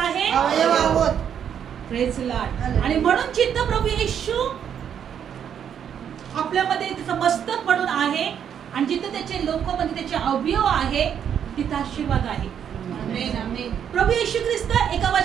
अवयव आहोत. Praise the Lord. आणि म्हणून जिथं प्रभू येशू आपल्यामध्ये त्याचं मस्तक म्हणून आहे आणि जिथं त्याचे लोक म्हणजे त्याचे अवयव आहे तिथं आशीर्वाद आहे. आमेन. आमेन. प्रभू येशू ख्रिस्त एका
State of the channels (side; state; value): left; quieter; 8.6 dB